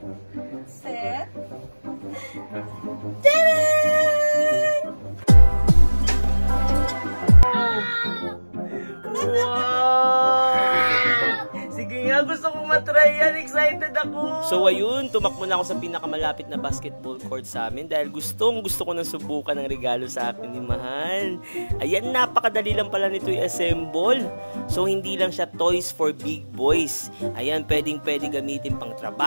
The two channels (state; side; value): inverted; both; correlation -1.00